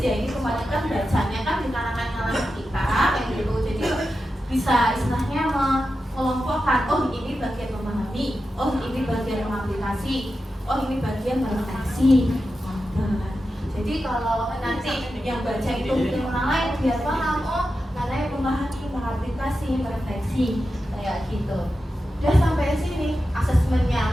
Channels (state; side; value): normal; both; correlation 0.91